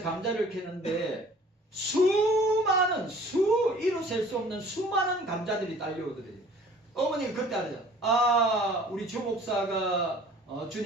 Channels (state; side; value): normal; both; correlation 0.51